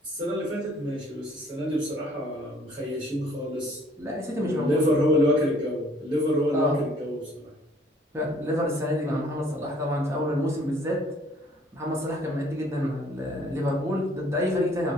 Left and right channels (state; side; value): normal; both; correlation 0.59